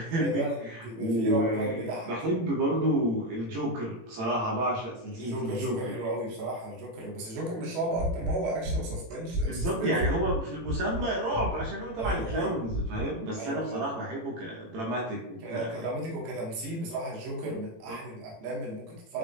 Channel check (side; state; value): left; late; 18 ms